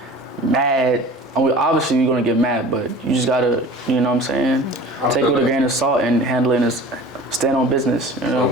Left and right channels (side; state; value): both; normal; correlation 0.41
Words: mad. I mean, obviously you're gonna get mad, but you just gotta, you know what I'm saying? Take it with a grain of salt and handle it as stand on business. You know. So